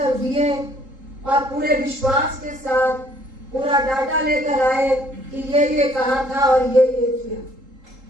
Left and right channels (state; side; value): late; left; 3.8 ms